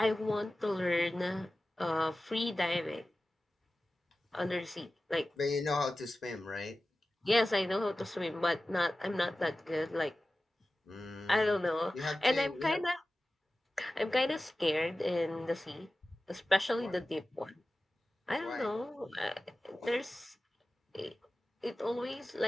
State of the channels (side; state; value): both; normal; correlation 0.96